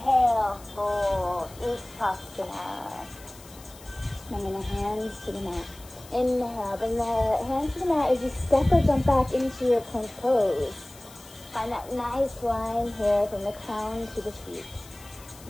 fold, Utthasana. Bringing the hands to the mat. Inhale, bring the hands to the mat as you step or jump back into your plank pose. Find that nice line here from the crown to the feet.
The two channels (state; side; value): noise; left; hiss, 20 dB below the sound